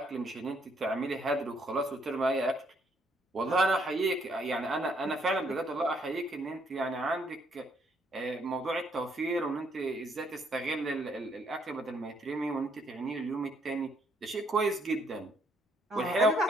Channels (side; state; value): both; normal; correlation 0.70